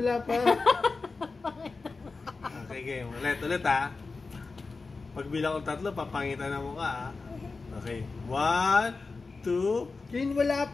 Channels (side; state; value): right; quieter; 4.1 dB